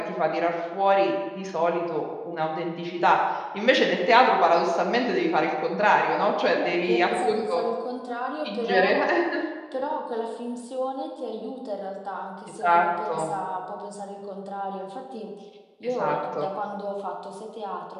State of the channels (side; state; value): both; identical; correlation 1.00